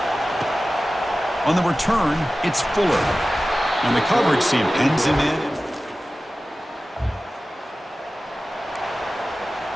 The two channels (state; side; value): normal; both; correlation 0.96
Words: On the return, it's Fuller. And the coverage team pins him in.